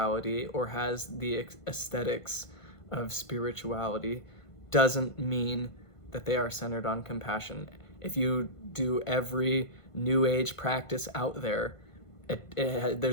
or has the aesthetics of spirituality doesn't mean that they are centered on compassion. If you do every New Age practice out there,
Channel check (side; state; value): right; late; 1.5 ms